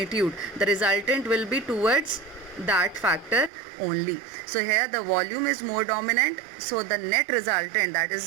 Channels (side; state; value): left; drops out; at 3.5 s